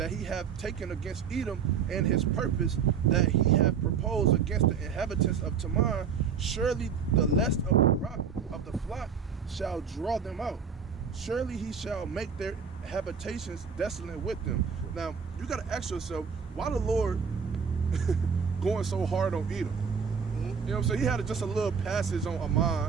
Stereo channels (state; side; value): quieter; left; 6.6 dB